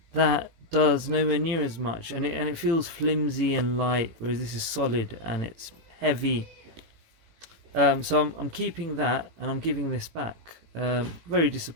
that does nowhere near as much, and it feels flimsy and light, whereas this is solid and it's heavy. So I'm keeping that, and I'm giving this back. Very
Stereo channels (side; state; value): left; late; 18 ms